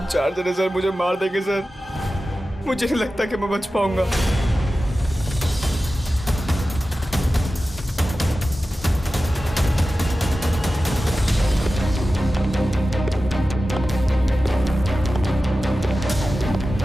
4 जने सर मुझे मार देंगे सर। मुझे नहीं लगता कि मैं बच पाऊंगा।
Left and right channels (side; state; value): both; normal; correlation 0.94